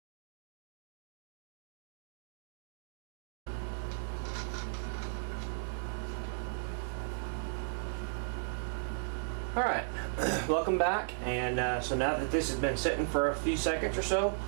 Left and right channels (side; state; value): left; silent; digital silence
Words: Alright, welcome back, and so now that this has been sitting for a few seconds or so,